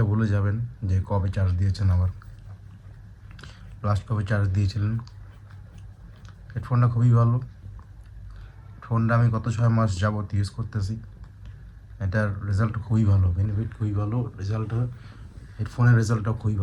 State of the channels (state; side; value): identical; both; correlation 1.00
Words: ভুলে যাবেন যে কবে চার্জ দিয়েছেন, আবার লাস্ট কবে চার্জ দিয়েছিলেন। হেডফোনটা খুবই ভালো। ফোনটা আমি গত 6 মাস যাবত ইউজ করতেছি। এটার রেজাল্ট খুবই ভালো, বেনিফিট খুবই ভালো, হেডফোনের রেজাল্টটাও খুবই